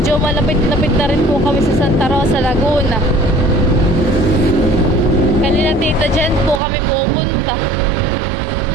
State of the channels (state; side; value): drops out; left; at 6.6 s